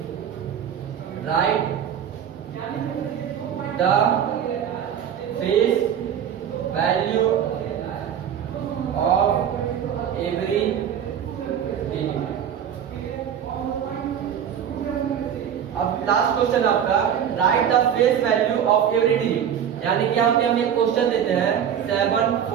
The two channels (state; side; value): quieter; left; 8.9 dB